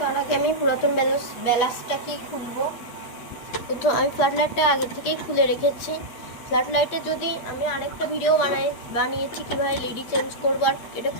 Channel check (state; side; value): late; right; 8.2 ms